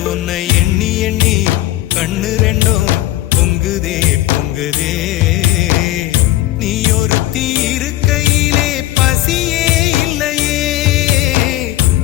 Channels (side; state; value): right; quieter; 15.2 dB